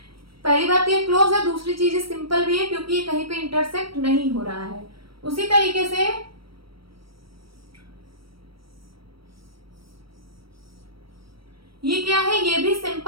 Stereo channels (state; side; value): late; left; 0.75 ms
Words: पहली बात ये क्लोज है, दूसरी चीज सिंपल भी है क्योंकि ये कहीं पे इंटरसेक्ट नहीं हो रहा है। उसी तरीके से ये क्या है, ये भी